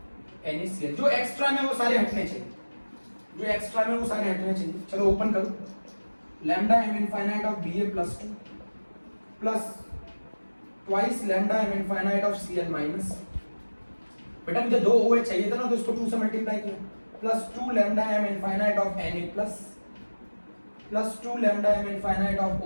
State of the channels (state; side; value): inverted; both; correlation -1.00